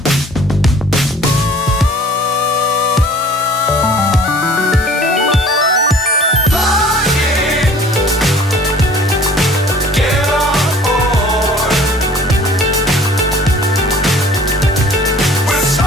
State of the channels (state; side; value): normal; both; correlation 0.50